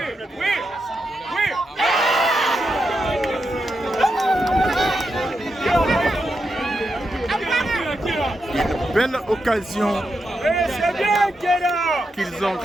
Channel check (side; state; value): both; normal; correlation 0.86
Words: Une belle occasion qu'ils ont